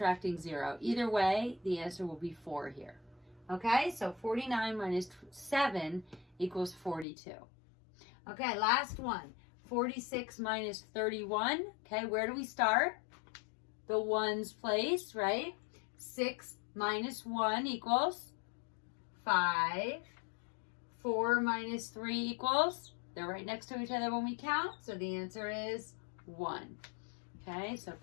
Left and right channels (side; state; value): right; drops out; at 7.1 s